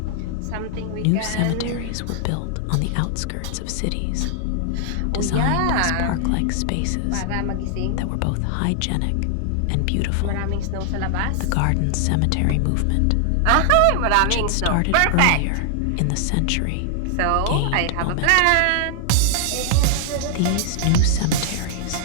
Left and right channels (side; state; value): both; different; correlation 0.00